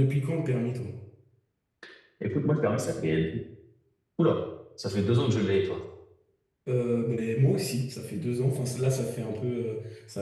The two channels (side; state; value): both; identical; correlation 1.00